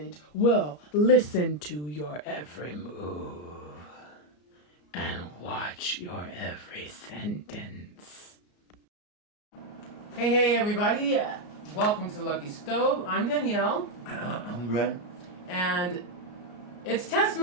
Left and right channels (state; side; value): late; right; 34 ms